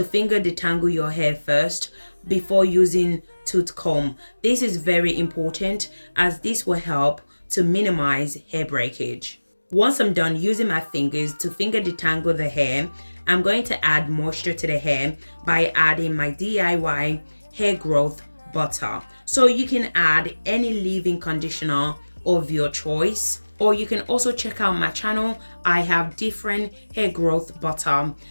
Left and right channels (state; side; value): inverted; both; correlation -1.00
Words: finger detangle your hair first before using tooth comb. This is very important as this will help to minimize hair breakage. Once I'm done using my fingers to finger detangle the hair, I'm going to add moisture to the hair by adding my DIY hair growth butter. So you can add any leave-in conditioner of your choice, or you can also check out my channel. I have different hair growth butter.